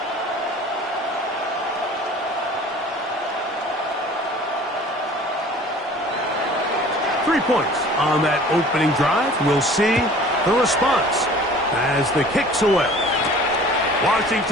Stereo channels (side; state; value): both; normal; correlation 0.47